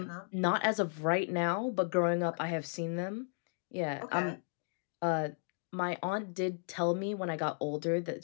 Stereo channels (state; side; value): silent; right; digital silence